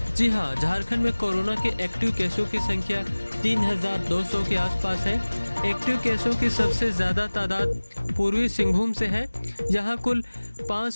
जी हां, झारखंड में कोरोना के एक्टिव केसों की संख्या 3200 के आसपास है। एक्टिव केसों की सबसे ज़्यादा तादाद पूर्वी सिंहभूम से है, जहां कुल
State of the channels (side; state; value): both; inverted; correlation -1.00